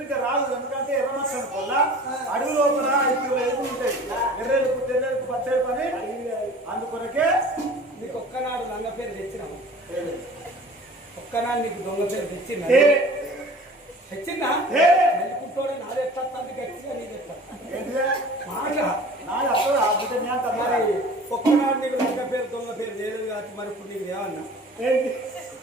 రాదు ఎందుకంటే ఎర్రమచ్చని వల్ల అడుగు లోపల ఇప్పుడు ఎదుగు ఉంటాయి ఎర్రెలకు తెర్రెలకు పచ్చడి పని అందుకొరకే నీకు ఒక్కనాడు లంగ పేరు తెచ్చినాము ఒక్కనాడు నీకు దొంగ పేరు తెచ్చిందా తెచ్చిందా నెలకుంటోడే నాది ఎట్లా గట్టిగా నీకు మరి ఒక్కనాడు నీకు లంగ పేరు దొంగ పేరు చేయలేదు కాబట్టి మరి ఇప్పుడు నీకు ఏమన్నా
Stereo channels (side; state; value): both; normal; correlation 0.44